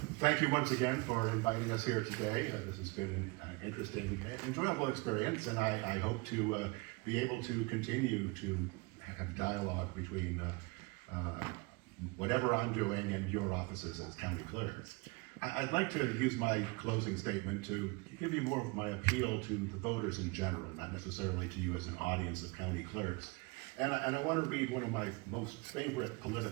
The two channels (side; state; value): left; quieter; 26.9 dB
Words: thank you once again for inviting us here today. This has been an interesting, enjoyable experience, and I hope to be able to continue to have dialogue between whatever I'm doing and your offices as county clerks. I'd like to use my closing statement to give you more of my appeal to the voters in general, not necessarily to you as an audience of county clerks. And I want to read one of my most favorite